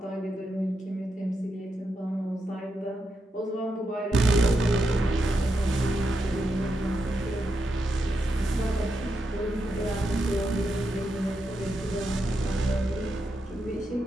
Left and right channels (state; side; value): normal; both; correlation 0.85